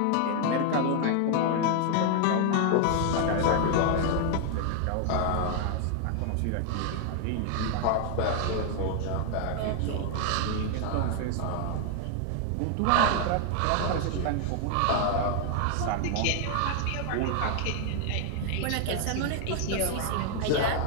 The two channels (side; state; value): both; different; correlation 0.00